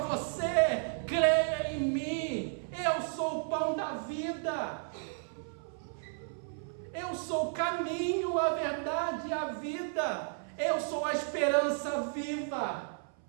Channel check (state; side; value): silent; left; 56 dB below the other